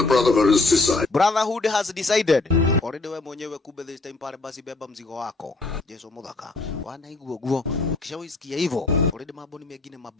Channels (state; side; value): quieter; right; 3.4 dB